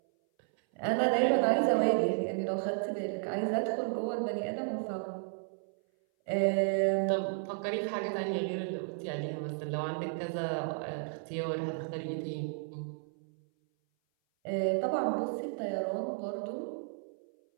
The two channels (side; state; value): left; silent; 56 dB below the other